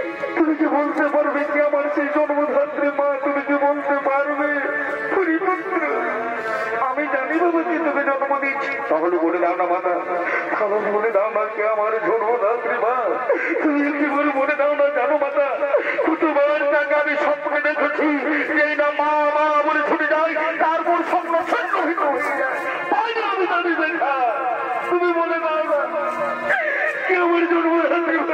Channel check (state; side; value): identical; both; correlation 1.00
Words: তুমি কি বলতে পারবে কি আমার সেই জন্মধাত্রী মা তুমি কি বলতে পারবে আমি জানি বাবা কি তুমি জন্ম দিচ্ছি তাহলে বলে দাও না মাতা তাহলে বলে দাও না কে আমার জন্মধাত্রী মা তুমি কি বলে বলে দাও না জানো মাতা কতবার টাকা আমি স্বপ্নে দেখেছি যে না মা মা বলে ছুটে যাই তারপর স্বপ্ন সন্ন্যহিত হয়ে যায় আমি জানি দেখা তুমি বলে দাও না কে আমার জন্মধাত্রী মা